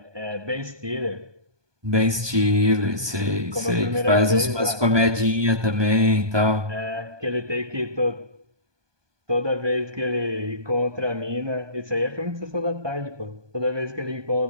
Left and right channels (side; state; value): left; late; 1.2 ms